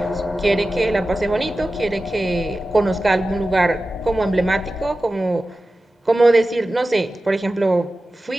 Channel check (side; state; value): both; normal; correlation 0.95